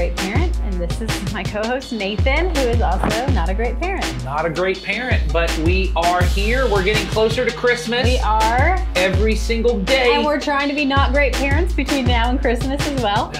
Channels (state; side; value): identical; both; correlation 1.00